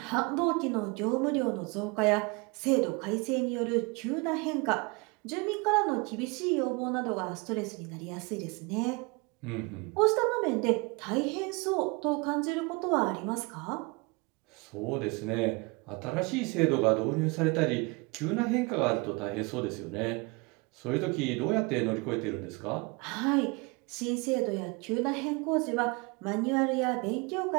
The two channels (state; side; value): quieter; left; 28.2 dB